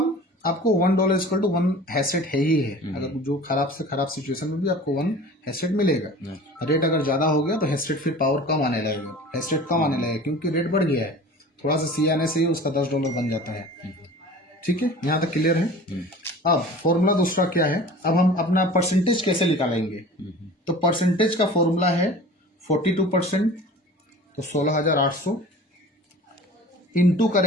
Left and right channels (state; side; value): normal; both; correlation 0.41